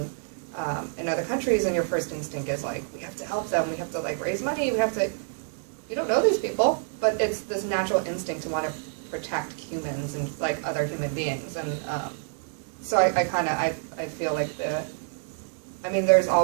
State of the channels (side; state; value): left; silent; 60 dB below the other